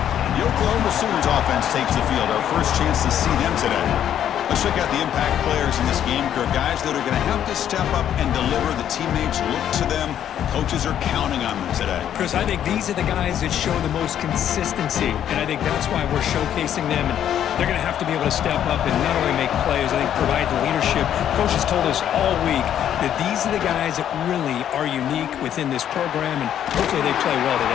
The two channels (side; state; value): right; quieter; 10.2 dB